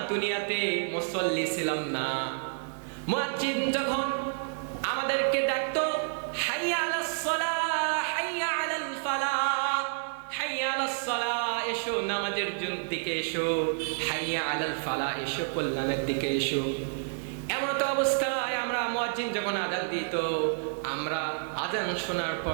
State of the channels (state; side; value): silent; left; digital silence